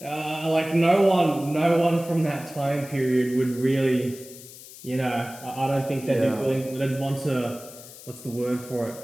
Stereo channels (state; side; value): noise; left; hiss, 17 dB below the sound